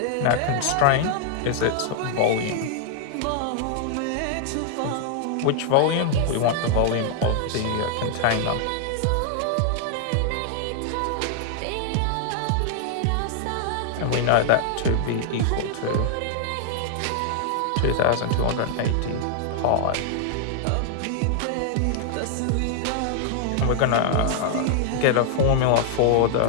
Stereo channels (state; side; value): different; both; correlation -0.01